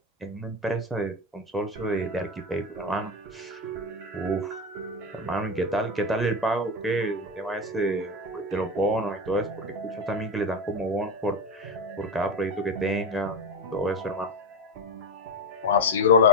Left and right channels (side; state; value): both; normal; correlation 0.15